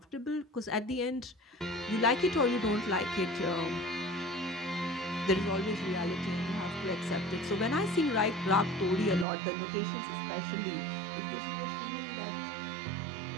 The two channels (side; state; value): left; drops out; at 9.2 s